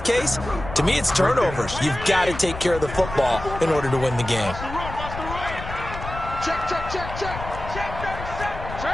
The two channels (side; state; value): left; noise; rumble, 9 dB below the sound